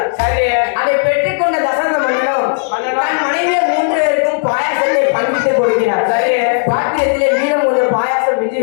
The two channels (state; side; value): silent; right; digital silence